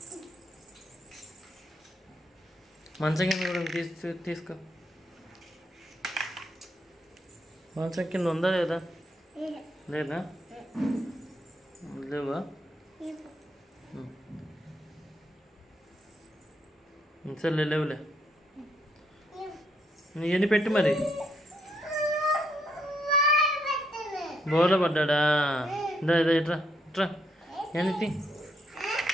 మంచం కింద కూడా తీసుకో. మంచం కింద ఉందా లేదా? లేదా? లేవా? సరే లేవులే. ఇవన్నీ పెట్టి మరి. బోర్లో పడ్డా? ఇదా ఇదా ఇట్రా ఇట్రా.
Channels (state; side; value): normal; both; correlation 0.75